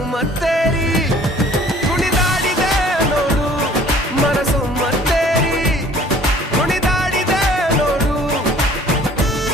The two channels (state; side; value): normal; both; correlation 0.53